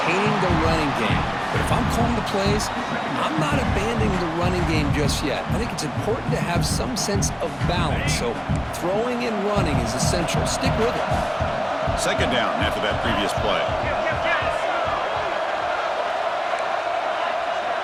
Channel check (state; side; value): identical; both; correlation 1.00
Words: the running game. But if I'm calling the plays, I'm not abandoning the running game just yet. I think it's important to have some sense of balance. So throwing and running is essential. Stick with it. Second down after that previous play.